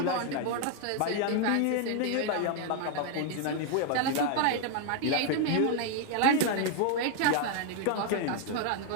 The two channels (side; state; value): both; different; correlation 0.00